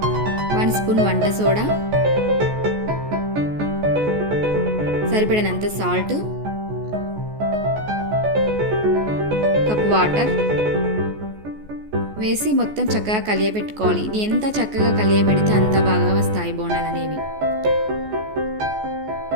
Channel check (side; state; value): left; late; 14 ms